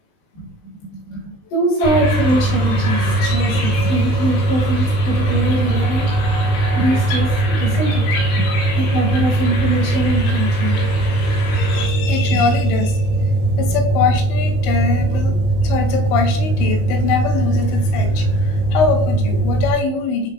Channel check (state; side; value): late; right; 19 ms